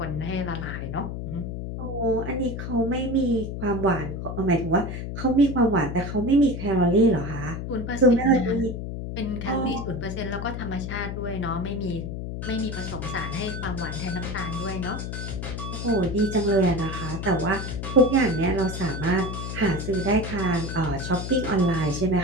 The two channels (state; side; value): noise; left; hum, 5 dB below the sound